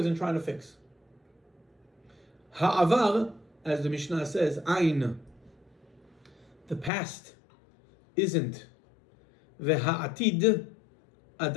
and trying to fix. Ha'avar, as the Mishnah says, ain. The past isn't. Ve'ha'atid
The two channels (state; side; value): drops out; right; at 6.9 s